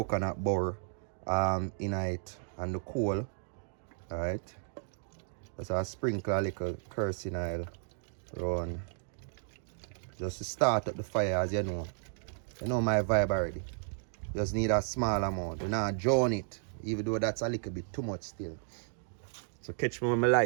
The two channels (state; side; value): silent; left; 55 dB below the other